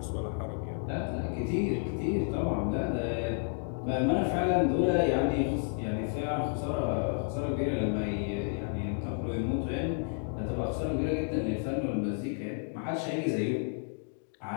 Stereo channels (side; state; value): right; silent; 57 dB below the other